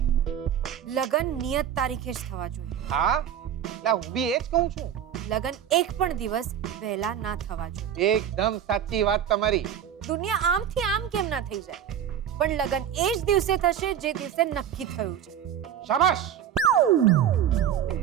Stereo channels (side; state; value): left; quieter; 9.5 dB